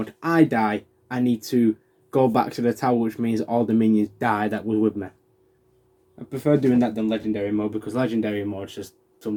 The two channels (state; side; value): identical; both; correlation 1.00